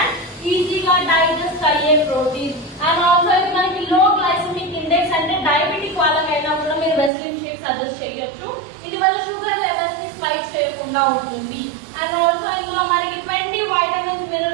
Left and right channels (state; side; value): drops out; left; at 7.1 s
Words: ఈజీగా డైజెస్ట్ అయ్యే ప్రోటీన్. అండ్ ఆల్సో ఇది మనకి లో గ్లైసెమిక్ ఇండెక్స్ అంటే డయాబెటిక్ వాళ్ళకైనా కూడా మీరు వెస్లిన్ షేక్ సజెస్ట్ చేయొచ్చు. ఇది మన షుగర్ లెవెల్స్ ని స్పైక్ చేయకుండా ఉంటుంది. అండ్ ఆల్సో ఇందులో మనకి 20 వైటమిన్స్